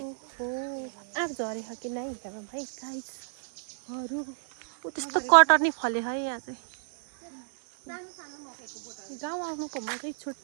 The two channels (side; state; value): left; silent; 58 dB below the other